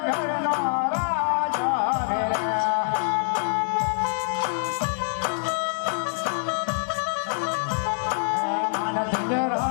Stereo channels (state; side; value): silent; right; digital silence